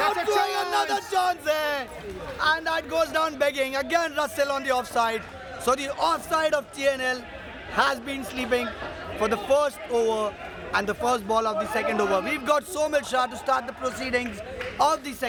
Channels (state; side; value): identical; both; correlation 1.00